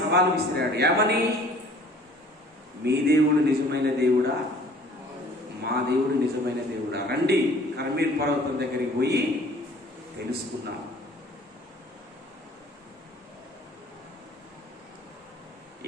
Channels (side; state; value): both; normal; correlation 0.52